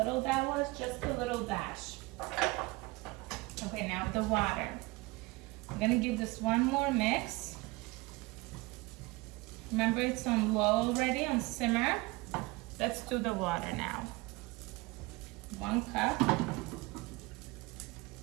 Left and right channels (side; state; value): left; quieter; 23.3 dB